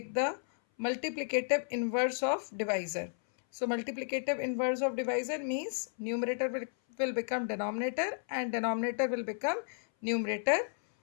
the multiplicative inverse of divisor. So multiplicative inverse of divisor means numerator will become denominator and denominator will become numerator,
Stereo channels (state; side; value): silent; right; 56 dB below the other